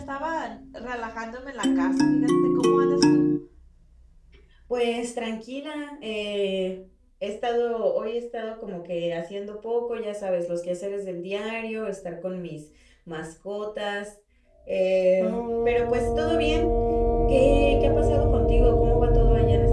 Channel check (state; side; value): identical; both; correlation 1.00